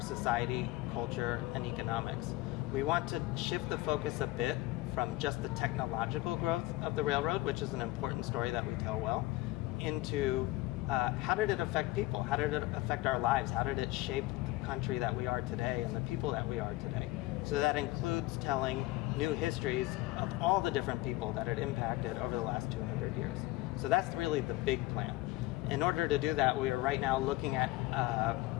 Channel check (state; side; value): quieter; right; 19.2 dB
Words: society, culture, and economics. We want to shift the focus a bit from just the technological growth of the railroad, which is an important story that we tell well, into how did it affect people? How did it affect our lives? How did it shape the country that we are today and the people that we are today? So that includes telling new histories of all the different people that it impacted over the last 200 years. So that's really the big plan. In order to do that, we are right now looking at